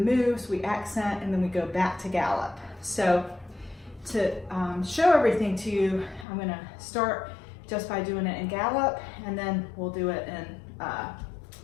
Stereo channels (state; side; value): drops out; right; at 6.2 s